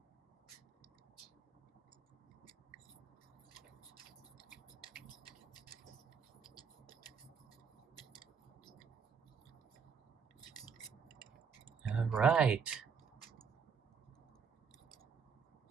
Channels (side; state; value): left; quieter; 6.4 dB